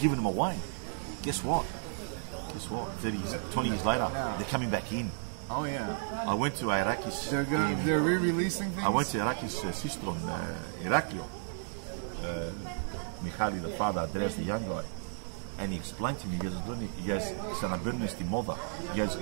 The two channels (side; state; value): left; silent; 56 dB below the other